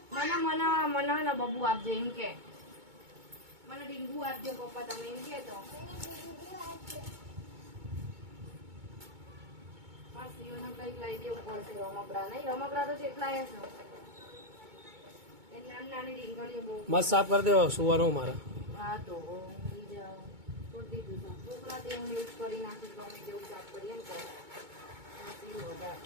મને મને મને ને બબુ આપજો એમ કે. મને ડીંગુ આપજો પપ્પા તમે એમ કે તો. બસ ઈઓને કંઈક લઈ દેવું પડશે. રમકડા નહીં, રમકડા તો કેટલા છે. એ નાની નાની ડીંગળીઓ બહુ. મસ્ત સાફ કરી દેવા સુવાનું મારા. હા તો ઊંઘી જાઓ. છોડી દીધું છે. છોકરા તે હું યુઝ કરી નાખું ગમે તેવું સાફ કરીએ ને તો. વધારે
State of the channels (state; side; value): late; left; 2.2 ms